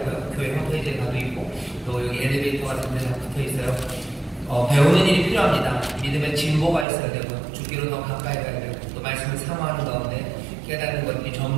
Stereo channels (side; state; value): left; drops out; at 6.9 s